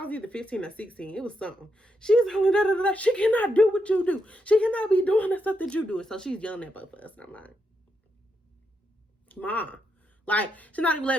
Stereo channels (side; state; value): both; normal; correlation 0.82